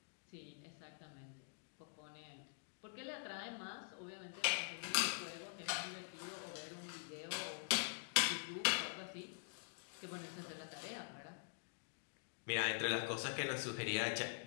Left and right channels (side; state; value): right; silent; digital silence